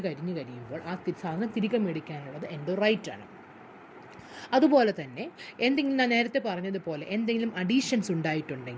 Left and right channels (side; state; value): both; identical; correlation 1.00